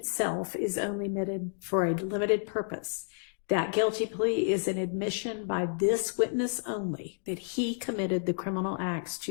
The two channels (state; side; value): silent; right; digital silence